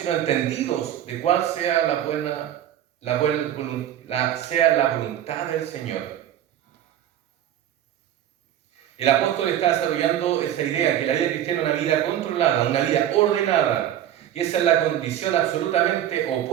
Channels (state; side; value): quieter; left; 11.3 dB